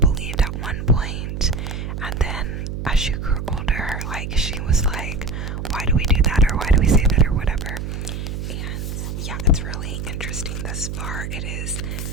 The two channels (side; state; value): right; noise; hum, 5 dB below the sound